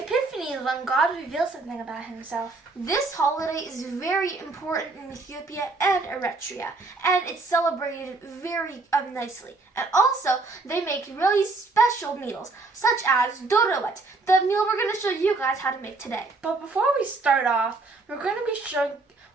is when God reveals something about himself. This holiday is very important in Ethiopia and Eritrea, and it's celebrated very nicely. And also, they make really special meals, such as Doro Wet, the meal we're going to show you guys how to make today. But before we start off, we're going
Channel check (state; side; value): quieter; left; 3.6 dB